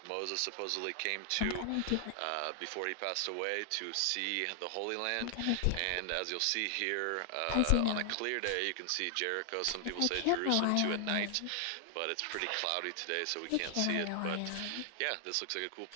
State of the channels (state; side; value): different; both; correlation 0.00